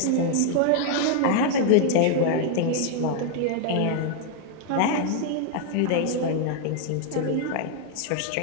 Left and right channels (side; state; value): both; different; correlation 0.00